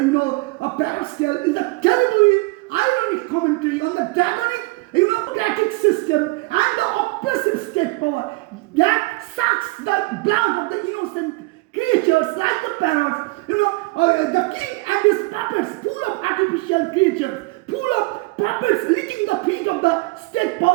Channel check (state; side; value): quieter; left; 24.5 dB